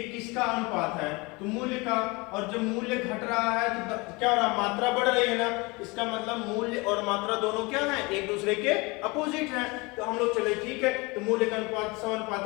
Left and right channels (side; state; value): right; quieter; 25.9 dB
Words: किसका अनुपात है, तो मूल्य का। और जब मूल्य घट रहा है तो क्या हो रहा है, मात्रा बढ़ रही है ना। इसका मतलब मूल्य और मात्रा दोनों क्या है, एक दूसरे के अपोजिट है। तो हम लोग चले ठीक है, तो मूल्य का अनुपात 100